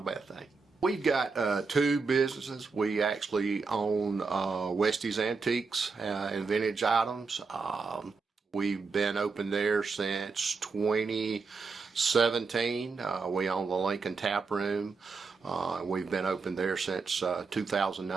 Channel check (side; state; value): left; quieter; 4.6 dB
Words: bad thing. We've got two businesses. We actually own Westie's Antiques and Vintage Items. We've been open there since 2017. We own the Lincoln Tap Room. We've been open there since